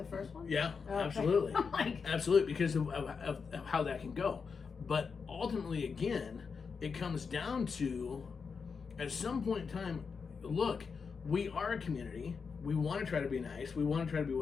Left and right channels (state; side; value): quieter; right; 5.5 dB